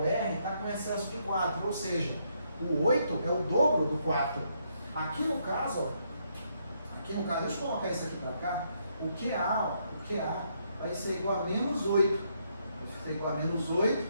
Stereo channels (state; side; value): inverted; both; correlation -0.74